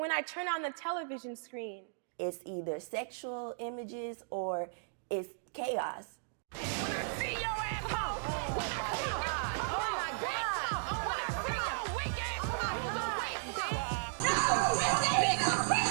I turn on the television screen, it's either sexual images or it's chaos. When I see your asshole, when I see your when I see your weak ass,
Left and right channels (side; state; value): left; silent; digital silence